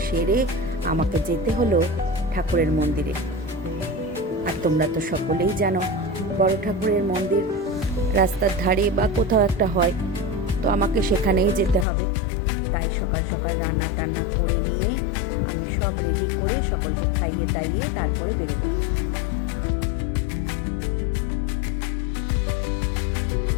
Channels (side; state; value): right; drops out; at 11.9 s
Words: সেরে আমাকে যেতে হলো ঠাকুরের মন্দিরে। আর তোমরা তো সকলেই জানো বড় ঠাকুরের মন্দির রাস্তার ধারে বা কোথাও একটা হয়, তো আমাকে সেখানেই যেতে হবে। তাই সকাল সকাল রান্না টান্না করে নিয়ে আমি সব রেডি করে সকলকে খাইয়ে দাইয়ে তারপরে বেরোবো।